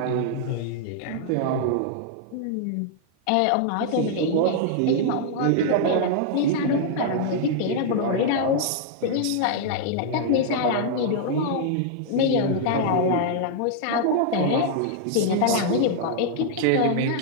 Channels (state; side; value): different; both; correlation -0.01